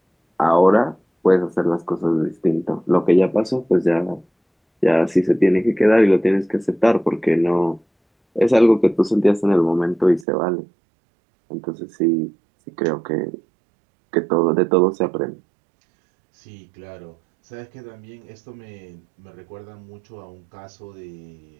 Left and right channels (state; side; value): drops out; left; at 10.2 s